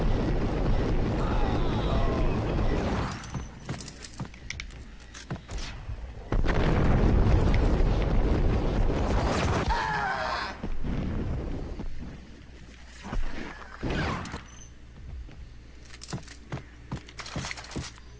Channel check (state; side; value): identical; both; correlation 1.00